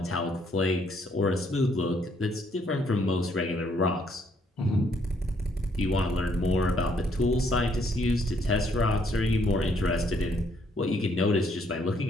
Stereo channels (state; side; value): normal; both; correlation 0.69